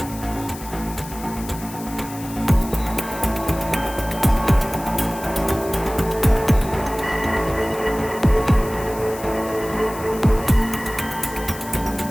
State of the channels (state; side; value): noise; left; hiss, 15 dB below the sound